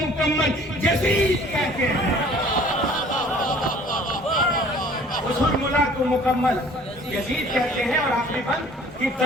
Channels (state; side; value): normal; both; correlation 0.52